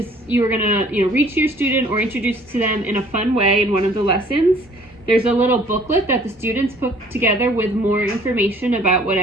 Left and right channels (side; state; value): both; normal; correlation 0.55